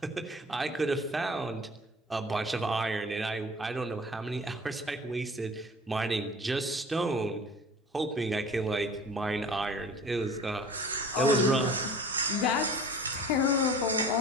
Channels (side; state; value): both; normal; correlation 0.45